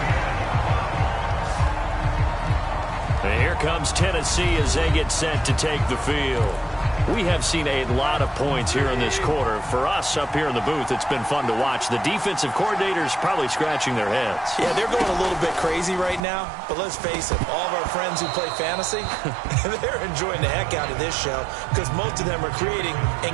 Here comes Tennessee as they get set to take the field. We have seen a lot of points here in this quarter. For us up here in the booth, it's been fun to watch. The defensive coordinators probably scratching their heads. Yeah, they're going a little bit crazy right now. But let's face it, all of our friends who play fantasy, they're enjoying the heck out of this show because most of them are creating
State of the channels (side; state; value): left; drops out; at 16.2 s